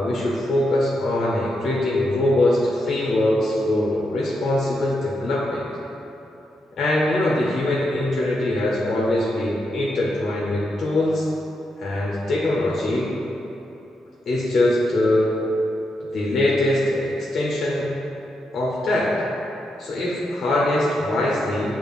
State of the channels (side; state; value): both; normal; correlation 0.83